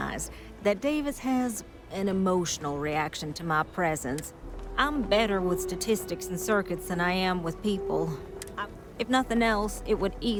that Davis has an emotional reaction to my presence. I'm better with statistics and circuits than I am with people. If nothing else, it would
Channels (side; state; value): both; identical; correlation 1.00